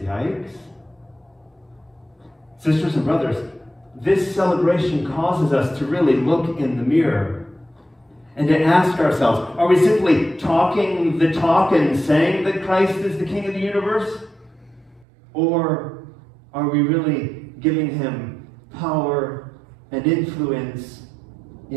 Sisters and brothers, this celebration causes us to really look in the mirror and to ask ourselves, are we simply talking the talk and saying that Christ is the King of the universe? Or are we really giving him power and influence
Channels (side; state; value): left; drops out; at 15.1 s